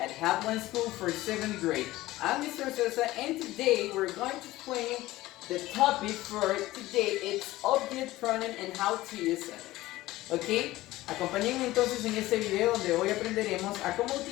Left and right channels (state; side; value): quieter; right; 17.3 dB